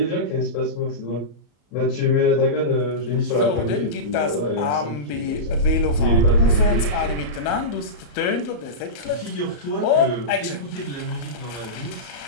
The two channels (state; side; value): late; right; 34 ms